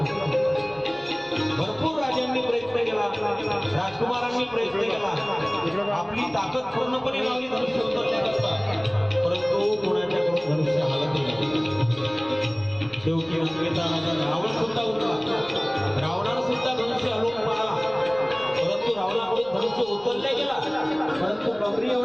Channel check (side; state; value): right; noise; rumble, 28 dB below the sound